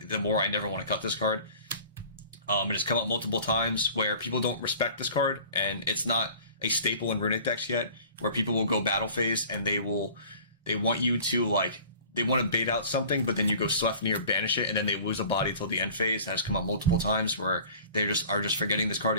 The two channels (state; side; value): inverted; both; correlation -0.46